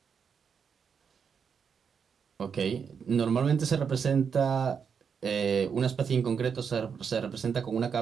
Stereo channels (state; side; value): quieter; left; 6.6 dB